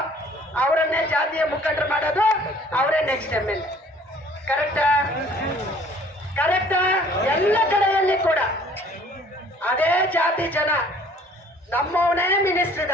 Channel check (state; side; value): normal; both; correlation 0.55